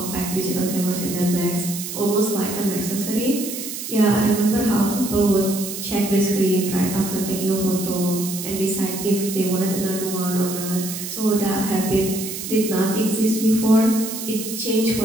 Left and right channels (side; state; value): right; noise; hiss, 7 dB below the sound